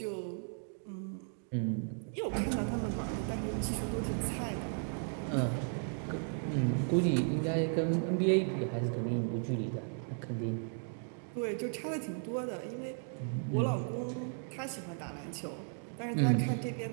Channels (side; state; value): left; silent; 54 dB below the other